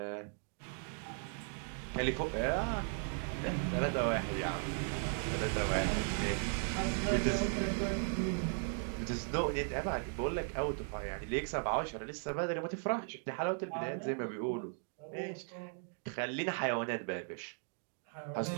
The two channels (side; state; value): left; silent; 53 dB below the other